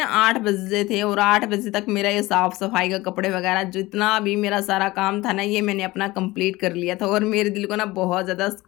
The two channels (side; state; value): right; quieter; 19.7 dB